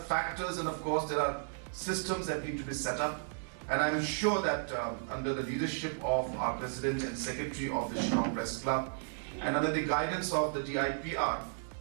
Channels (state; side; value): silent; left; digital silence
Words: factors, and of course there are systems that need to be set up, and I'm sure that under the leadership of our President and Secretary of the Shillong Press Club and under the guidance of the DIPR,